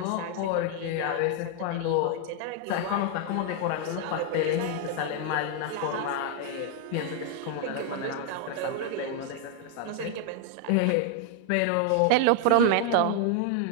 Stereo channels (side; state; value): both; different; correlation 0.00